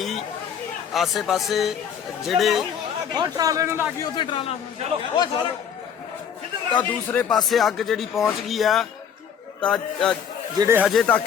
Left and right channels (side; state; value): right; quieter; 8.0 dB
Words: ਆਸੇ ਪਾਸੇ ਜਿਹੜੇ ਟਰਾਲੇ ਨੂੰ ਲੱਗੀ ਉੱਥੇ ਟਰਾਲਾ ਤਾਂ ਦੂਸਰੇ ਪਾਸੇ ਅੱਗ ਜਿਹੜੀ ਪਹੁੰਚ ਗਈ ਆ। ਤਾਂ ਜਿਹੜੇ ਹਜੇ